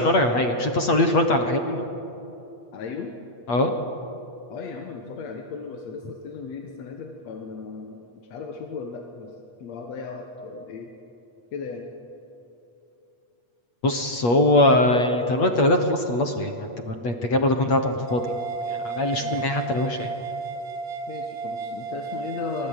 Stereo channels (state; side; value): late; right; 8.4 ms